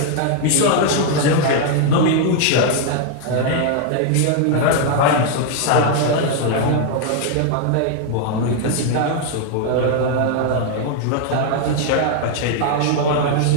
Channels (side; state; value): both; different; correlation 0.00